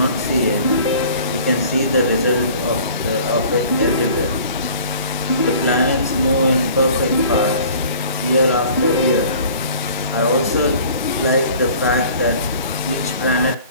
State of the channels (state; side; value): inverted; both; correlation -0.48